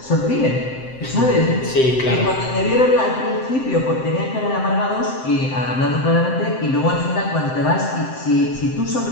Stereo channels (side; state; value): right; late; 7.7 ms